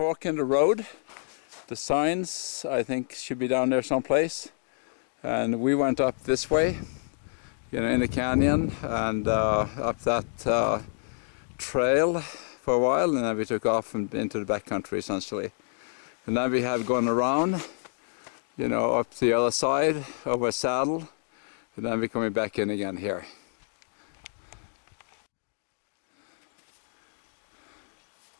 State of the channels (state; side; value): silent; right; digital silence